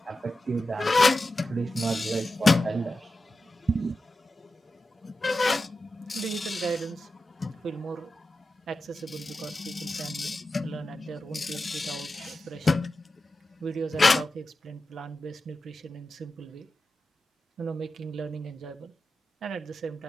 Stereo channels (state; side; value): normal; both; correlation 0.92